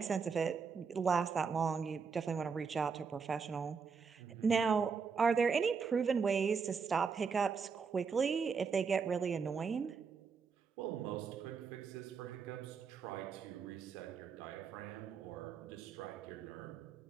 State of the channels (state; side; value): quieter; left; 5.7 dB